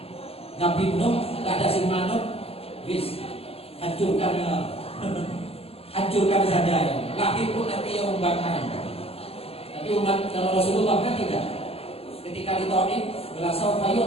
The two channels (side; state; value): right; late; 0.29 ms